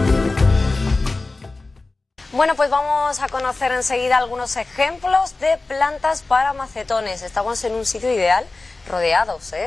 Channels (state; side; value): quieter; right; 3.4 dB